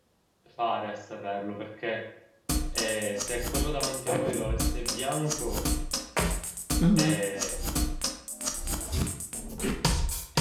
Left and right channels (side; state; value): both; identical; correlation 1.00